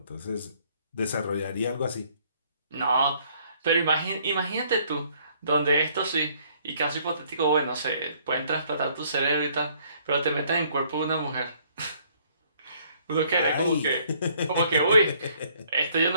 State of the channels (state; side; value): inverted; both; correlation -0.63